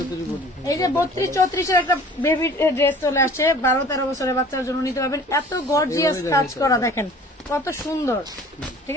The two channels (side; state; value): both; normal; correlation 0.48